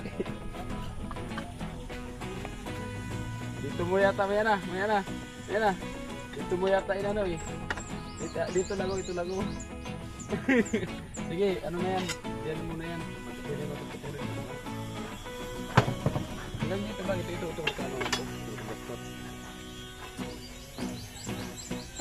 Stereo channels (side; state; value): both; identical; correlation 1.00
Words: Dito mo yata, maya na. Dito mo yata inano eh. Dito lago. Sige, ano na yan? Diyan mo na yan. Ilan dito ba? Ito.